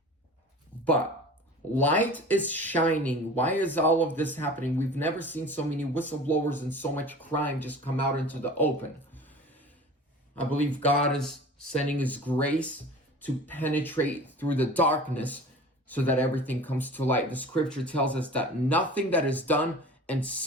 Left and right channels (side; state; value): both; normal; correlation 0.40